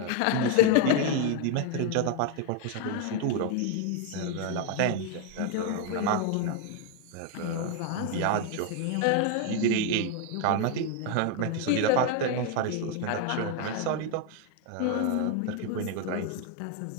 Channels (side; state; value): both; different; correlation 0.01